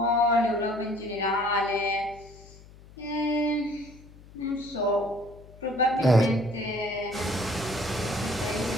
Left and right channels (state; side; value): noise; left; hum, 21 dB below the sound